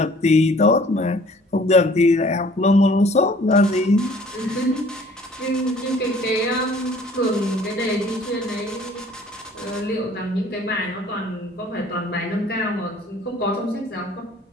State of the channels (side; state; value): both; normal; correlation 0.54